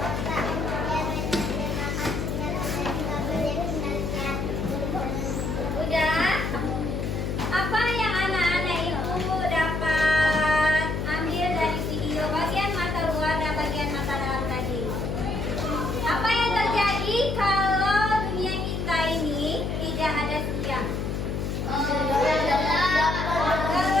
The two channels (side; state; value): left; noise; hum, 2 dB below the sound